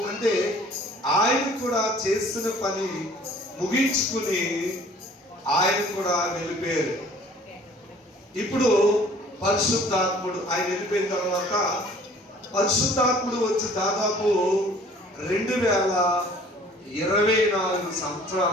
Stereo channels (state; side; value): normal; both; correlation 0.53